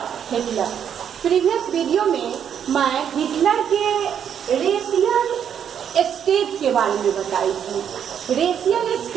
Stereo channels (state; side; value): quieter; left; 8.5 dB